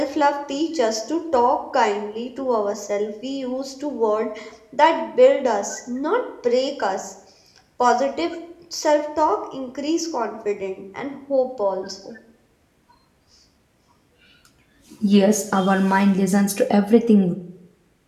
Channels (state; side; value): identical; both; correlation 1.00